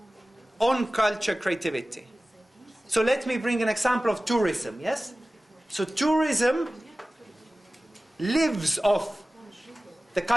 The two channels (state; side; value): normal; both; correlation 0.97